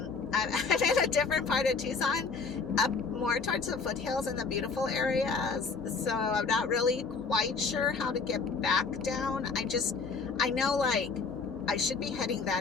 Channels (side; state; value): right; quieter; 4.7 dB